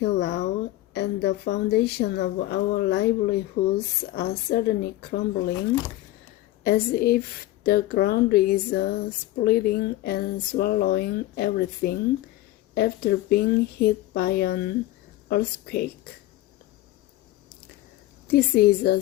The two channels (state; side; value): quieter; right; 16.0 dB